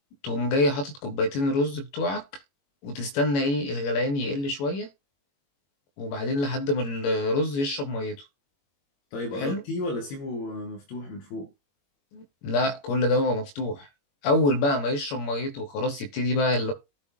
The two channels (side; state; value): right; late; 21 ms